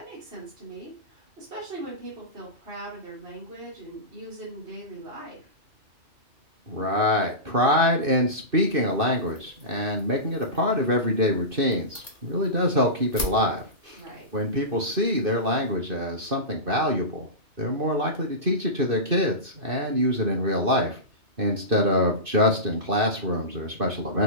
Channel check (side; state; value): left; late; 2.6 ms